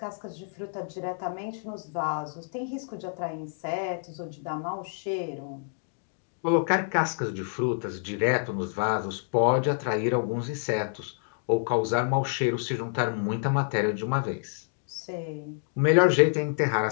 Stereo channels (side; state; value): right; silent; digital silence